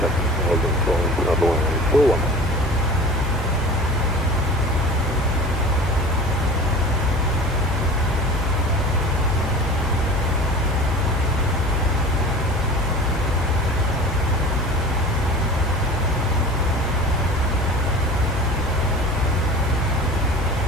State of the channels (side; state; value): both; normal; correlation 0.38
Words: seconds, holding phone number 141.